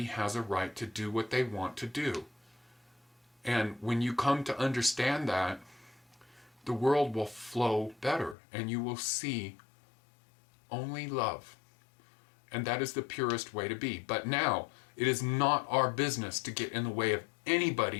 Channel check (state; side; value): drops out; right; at 8.3 s